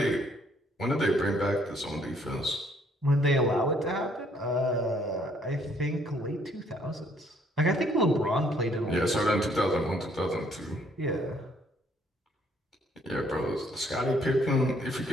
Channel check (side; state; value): both; normal; correlation 0.65